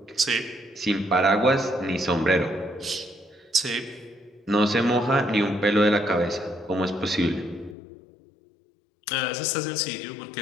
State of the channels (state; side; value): drops out; right; at 7.8 s